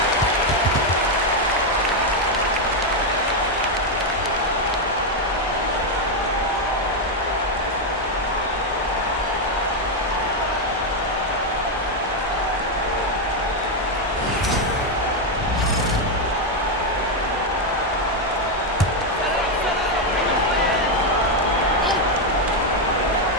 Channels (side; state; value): both; normal; correlation 0.03